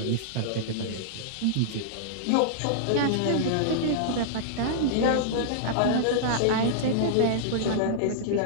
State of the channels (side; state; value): both; different; correlation -0.02